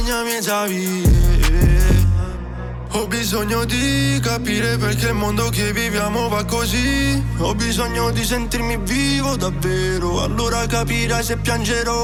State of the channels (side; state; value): both; identical; correlation 1.00